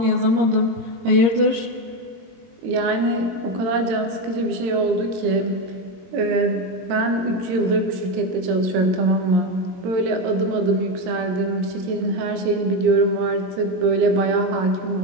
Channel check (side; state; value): left; late; 22 ms